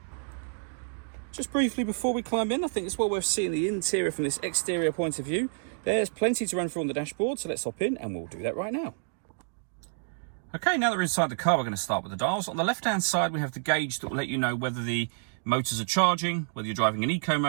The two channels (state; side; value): silent; left; digital silence